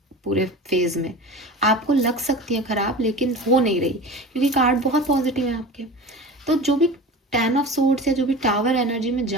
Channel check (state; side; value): normal; both; correlation 0.34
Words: पूरे फेज में, आपको लग सकती है खराब लेकिन हो नहीं रही, क्योंकि कार्ड बहुत पॉजिटिव है आपके। तो जो भी 10 ऑफ सोर्ड्स या जो भी टावर एनर्जी में